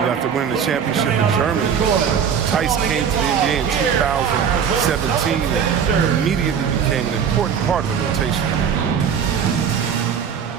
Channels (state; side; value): quieter; left; 7.5 dB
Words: winning the championship in Germany, Tice came to the NBA in 2017 and immediately became an important part of the rotation.